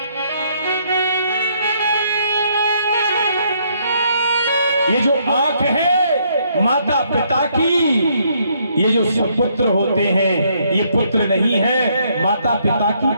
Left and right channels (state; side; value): inverted; both; correlation -0.70